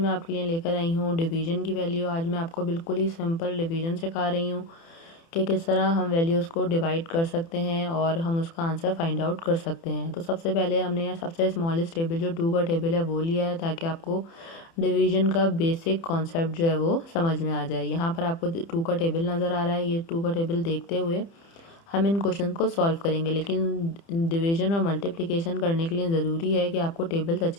आपके लिए लेकर आई हूँ डिवीजन की वैल्यू। आज मैं आपको बिल्कुल ही सिंपल डिवीजन सिखा रही हूँ कि किस तरह हम वैल्यूज़ को डिवाइड कर सकते हैं और हम उसका आंसर फाइंड आउट कर सकते हैं। तो सबसे पहले हमने यहाँ सबसे स्मॉलेस्ट टेबल जो 2 का टेबल है वो लिया है, ताकि आपको डिवीजन का बेसिक कॉन्सेप्ट जो है वो समझ में आ जाए। यहाँ पर आपको 2 का टेबल नज़र आ रहा है। ये 2 का टेबल देखते हुए हम इन क्वेश्चन को सॉल्व करेंगे, लेकिन डिवीजन और मल्टीप्लिकेशन करने के लिए ज़रूरी है कि आपको टेबल्स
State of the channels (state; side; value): late; right; 30 ms